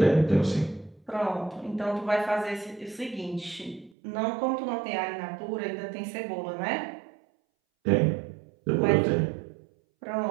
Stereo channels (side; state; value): left; drops out; at 3.9 s